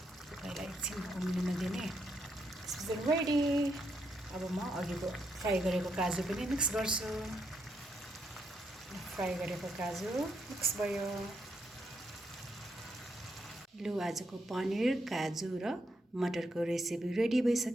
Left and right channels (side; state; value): both; normal; correlation 0.79